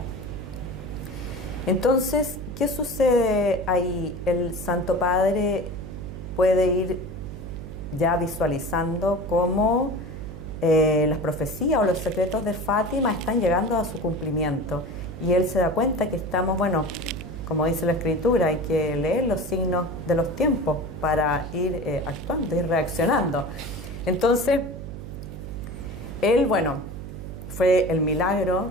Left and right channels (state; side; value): noise; right; hum, 10 dB below the sound